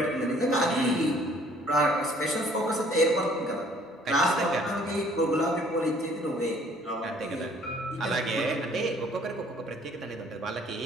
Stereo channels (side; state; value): both; normal; correlation 0.58